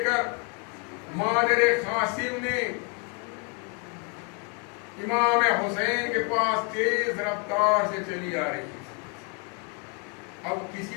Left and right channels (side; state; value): right; quieter; 33.2 dB